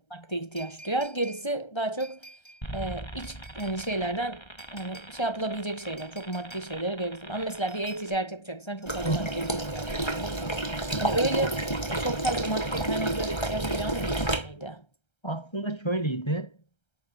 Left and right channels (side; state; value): right; late; 1.3 ms